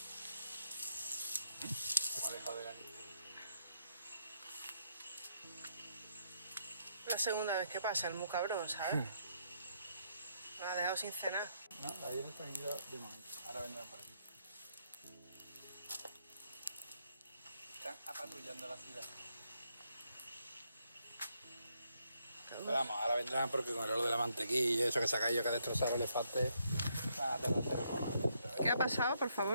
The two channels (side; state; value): both; inverted; correlation -0.75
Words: La segunda vez que pasa, el muy cabrón, ¿sabes? Me ha dejado sin cenar. No, ayer están ido de momento. Ahora vendrán para aquí. brillando la ciudad. Pero vamos, ahora vendrán porque con lo de la mantequilla, eso que se ha caído, que ha destrozado el elefante, va a tardar un poco más. ¿Qué ha pasado, por